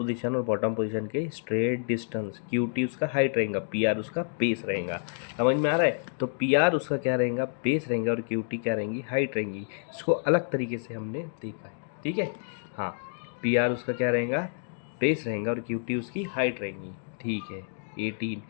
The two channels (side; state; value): right; silent; 59 dB below the other